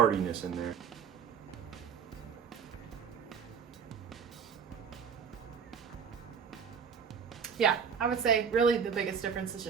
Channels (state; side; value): quieter; left; 6.9 dB